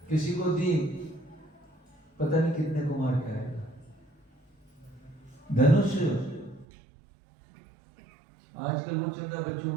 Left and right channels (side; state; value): left; drops out; at 6.7 s